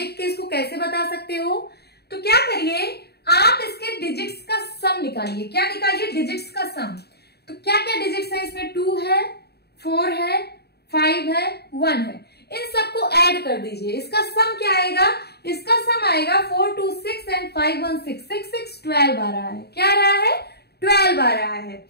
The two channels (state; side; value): late; right; 0.47 ms